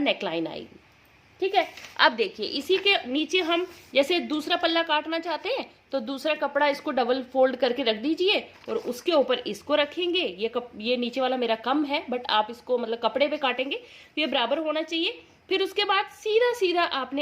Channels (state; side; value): identical; both; correlation 1.00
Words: आएगी। ठीक है, अब देखिए इसी के नीचे हम जैसे दूसरा पल्ला काटना चाहते हैं तो दूसरा कपड़ा इसको डबल फोल्ड करके रख दीजिए और उसके ऊपर इसको रखेंगे। ये नीचे वाला मेरा कम है, बट आप इसको मतलब कपड़े पे काटेंगे तो ये बराबर होना चाहिए। फिर उसके बाद सीधा सीधा आपने